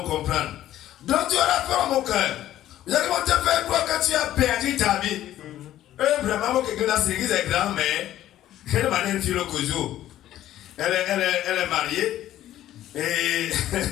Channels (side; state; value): right; quieter; 13.0 dB